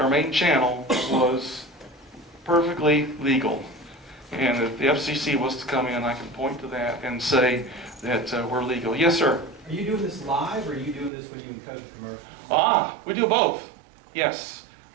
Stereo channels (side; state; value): left; drops out; at 11.1 s